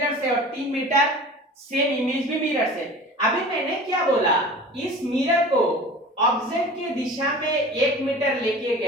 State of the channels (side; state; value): both; normal; correlation 0.39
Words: से और 3 मीटर सेम इमेज भी मिरर से। अभी मैंने क्या बोला, इस मिरर को ऑब्जेक्ट की दिशा में 1 मीटर लेके